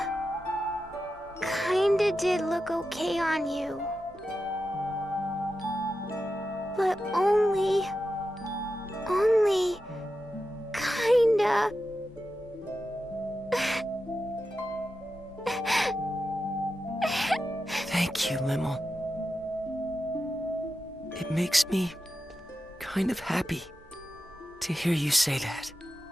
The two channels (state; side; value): normal; both; correlation 0.90